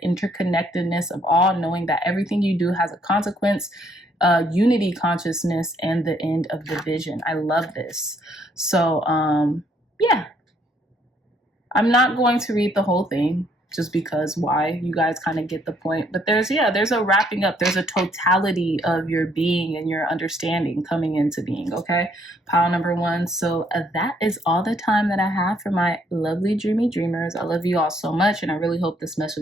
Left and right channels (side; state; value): both; normal; correlation 0.68